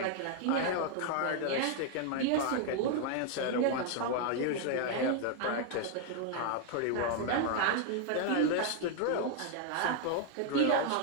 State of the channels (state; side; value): different; both; correlation 0.00